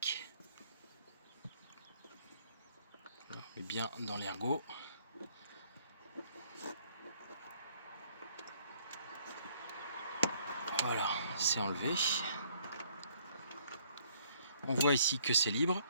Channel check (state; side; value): inverted; both; correlation -0.63